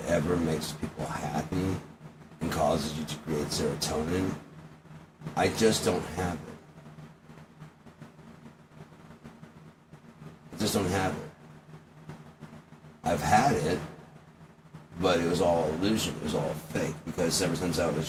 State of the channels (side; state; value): both; identical; correlation 1.00